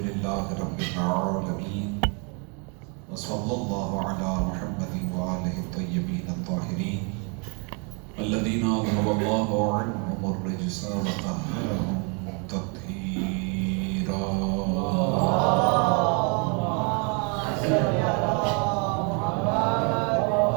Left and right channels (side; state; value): left; quieter; 35.6 dB